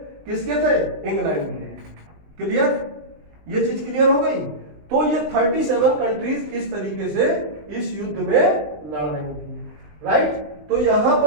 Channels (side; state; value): left; late; 20 ms